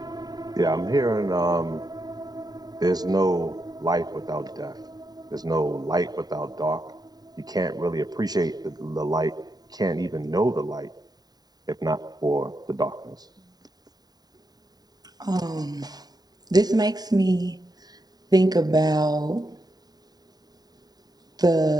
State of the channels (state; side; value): late; left; 0.19 ms